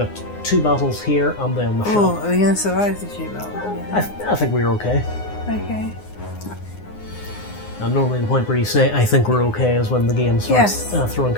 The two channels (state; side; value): late; right; 9.7 ms